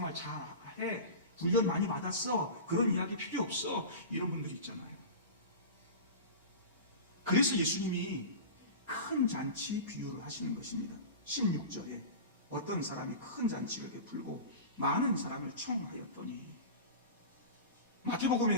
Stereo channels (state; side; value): inverted; both; correlation -0.30